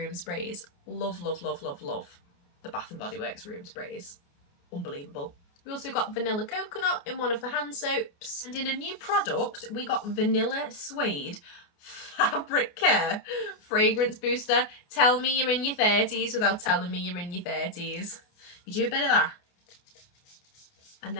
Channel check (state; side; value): late; right; 29 ms